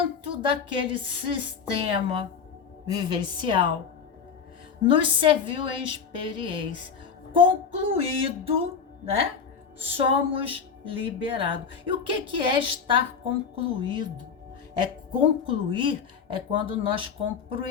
daquele sistema vivencial nos serviu em experiência. Concluído, né? Somos liberados. E o que é estar concluído? É concluir, é quando nós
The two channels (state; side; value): quieter; right; 6.3 dB